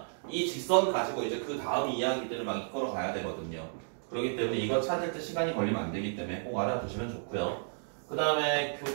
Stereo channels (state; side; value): silent; left; digital silence